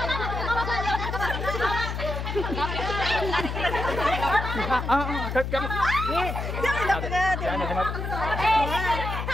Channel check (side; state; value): left; noise; hum, 4 dB below the sound